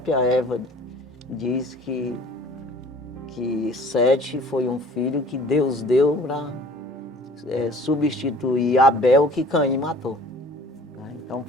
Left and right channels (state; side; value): normal; both; correlation 0.49